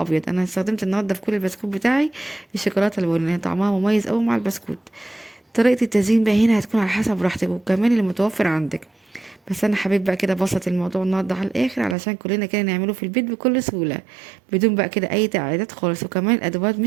انا استخدمت النهارده في كل البسكوت بتاعي الشوكولاته البني، طعمها مميز قوي مع البسكوت. طريقه التزيين بقى هنا هتكون على حسب راحتك وكمان اللي متوفر عندك. بس انا حبيت بقى كده ابسط الموضوع النهارده على الاخر علشان كلنا كده نعمله في البيت بكل سهوله، بدون بقى كده اي تعقيدات خالص، وكمان الادوات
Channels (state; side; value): drops out; left; at 12.0 s